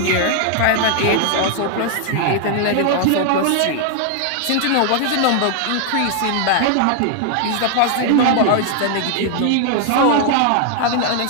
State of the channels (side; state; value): both; different; correlation 0.00